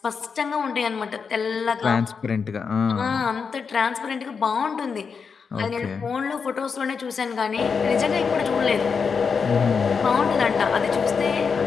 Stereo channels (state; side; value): quieter; right; 5.7 dB